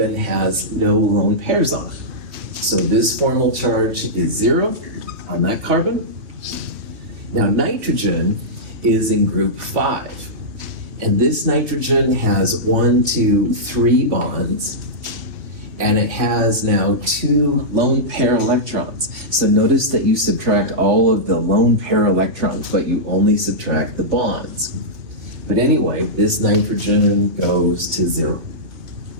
has no lone pairs on it. So this formal charge is 0 on that carbon. Now, nitrogen is in group 5. And this nitrogen has 1, 2, 3 bonds, and it has now 2 lone pair electrons. So notice that you subtract all of the lone pair electrons, but you only subtract the bonds. But anyway, this nitrogen goes to 0.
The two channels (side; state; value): left; late; 3.2 ms